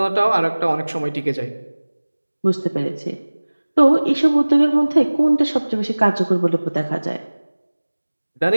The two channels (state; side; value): inverted; both; correlation -1.00